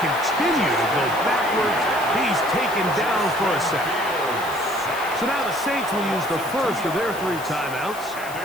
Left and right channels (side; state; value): left; noise; hiss, 15 dB below the sound